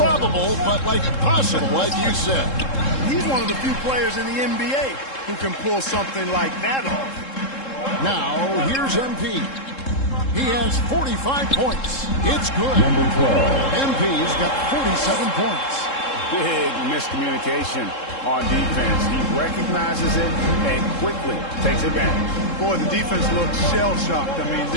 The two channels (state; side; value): late; right; 3.7 ms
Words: but like possible, like you said. He's one of the few players in the NBA who can pull something like that off. Now, here's MP. He has 45 points. It's good. Number 12. MP's got 47 points. Big miscommunication on defense. He recognizes it and quickly takes advantage. Boy, the defense looks shell-shocked. I mean,